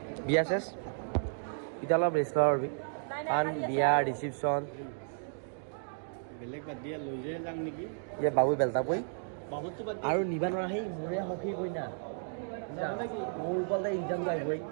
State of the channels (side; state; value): left; silent; digital silence